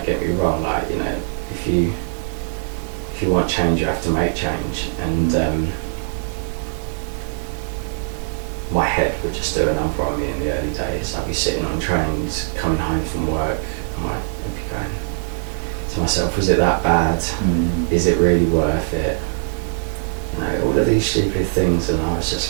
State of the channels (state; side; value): silent; left; digital silence